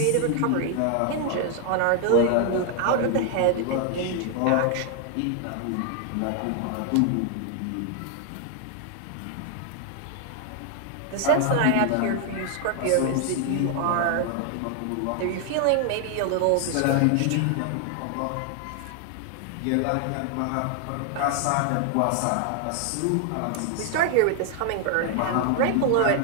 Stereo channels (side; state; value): both; different; correlation 0.00